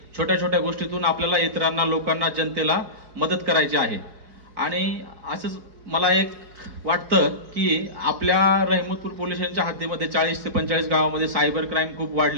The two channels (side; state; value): left; late; 4.7 ms